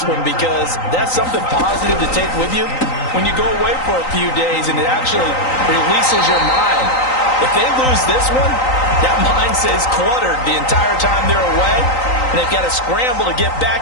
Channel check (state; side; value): late; right; 3.9 ms